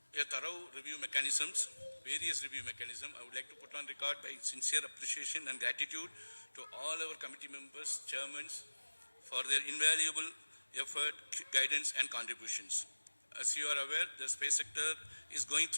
a thorough review mechanisms, various review mechanisms. I would like to put on record my sincere appreciation and gratitude to all our committee members, chairmen, for their invaluable effort, guidance, and contributions. As you are aware, the space sector is going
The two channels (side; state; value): both; inverted; correlation -1.00